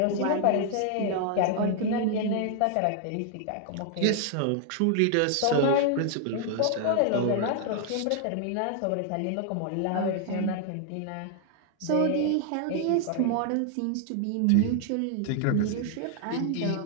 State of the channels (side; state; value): both; different; correlation 0.00